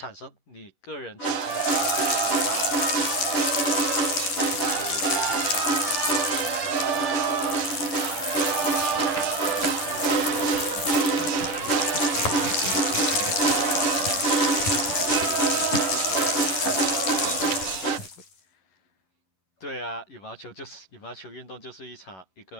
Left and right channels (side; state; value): right; late; 11 ms